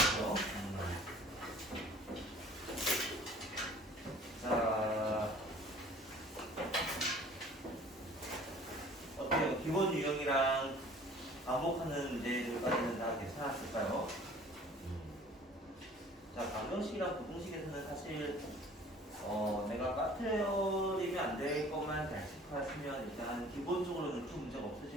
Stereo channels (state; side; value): normal; both; correlation 0.50